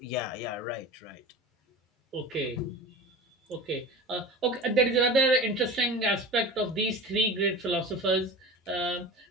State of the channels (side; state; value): both; normal; correlation 0.33